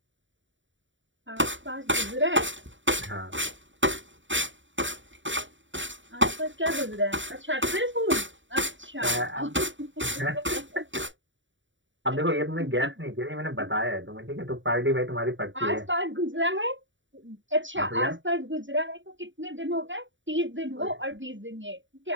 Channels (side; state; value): left; late; 0.55 ms